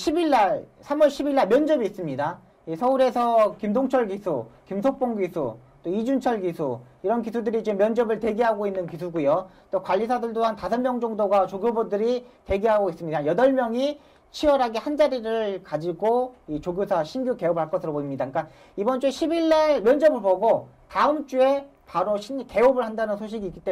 10일 날 면접이 있습니다. 서울에서 김동철 기수, 김석봉 기수, 또 이준철 기수 이런 기수들이 지금 면접을 대기하고 있는 기수고요. 또 관리사들도 한 5명 정도가 조교부들이 대기하고 있습니다. 8명이 치열하게 한 자리를 가지고 이 조교사 신규 개업을 할 것으로 보입니다. 그러니까 이번 주에 10일 날 면접을 보고 다음 주에 바로 개업을 한다는 소식이 있기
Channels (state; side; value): identical; both; correlation 1.00